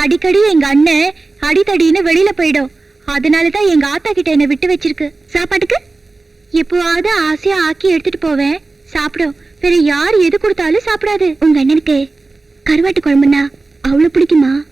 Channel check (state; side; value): quieter; left; 3.5 dB